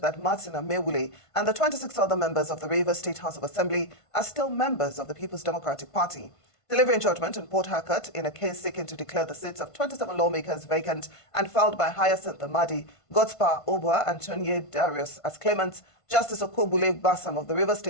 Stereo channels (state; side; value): late; right; 1.5 ms